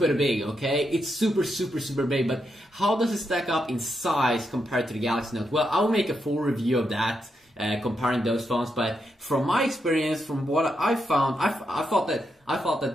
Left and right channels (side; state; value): both; normal; correlation 0.83